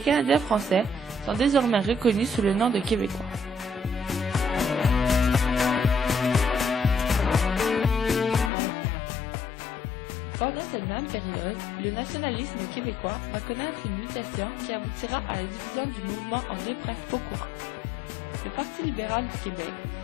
français sont désormais reconnus sous le nom de Québécois. Pendant cette même période, le nationalisme québécois va connaître une mutation qui aboutira à la division du mouvement en deux principaux courants. Le Parti libéral du Québec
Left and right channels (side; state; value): right; drops out; at 8.5 s